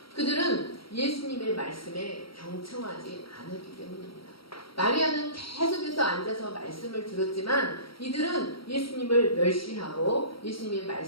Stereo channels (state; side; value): late; right; 0.75 ms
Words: 그들은 예수님의 말씀에 경청하지 않았기 때문입니다. 마리아는 계속해서 앉아서 말씀을 들었지만 이들은 예수님을 멸시하고 예수님의